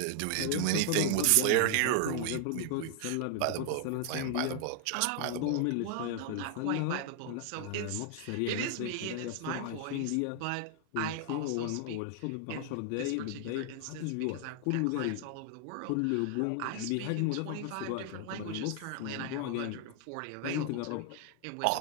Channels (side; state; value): both; different; correlation 0.00